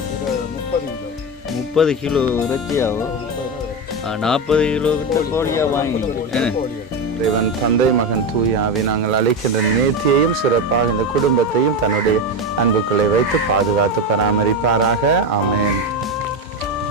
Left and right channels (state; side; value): normal; both; correlation 0.15